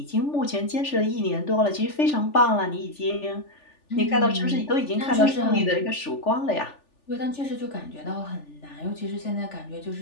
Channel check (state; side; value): late; right; 3.4 ms